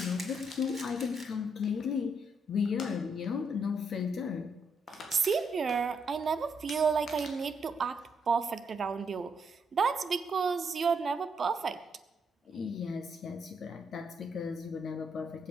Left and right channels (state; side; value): normal; both; correlation 0.77